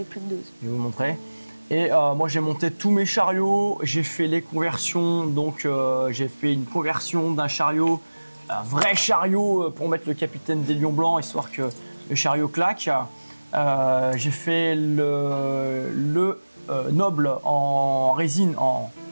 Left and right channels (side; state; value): both; inverted; correlation -1.00